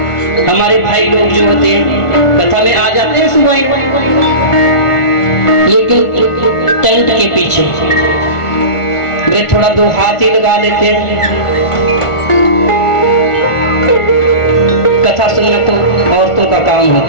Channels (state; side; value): late; right; 1.4 ms